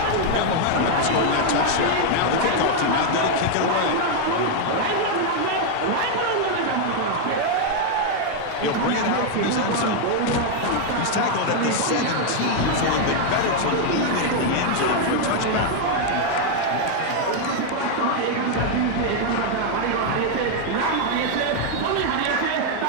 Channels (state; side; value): different; both; correlation 0.00